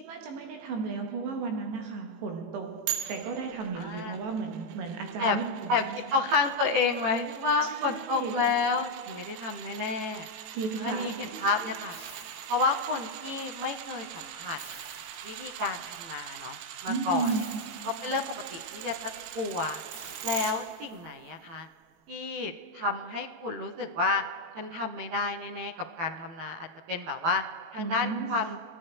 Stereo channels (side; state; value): left; late; 18 ms